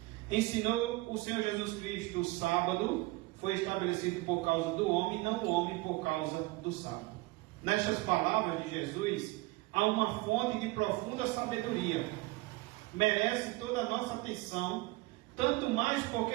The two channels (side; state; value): left; quieter; 21.7 dB